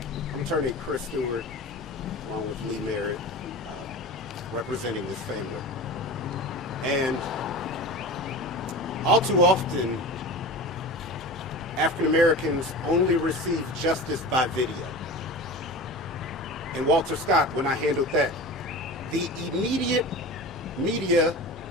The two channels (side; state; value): both; normal; correlation 0.33